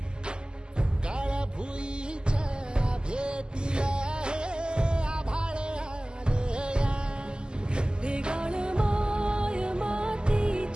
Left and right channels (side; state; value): left; late; 0.047 ms